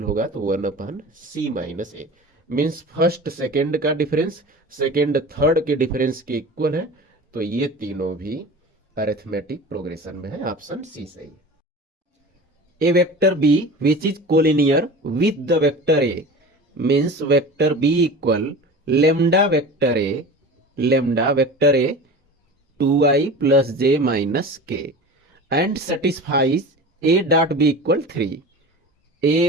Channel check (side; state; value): both; normal; correlation 0.35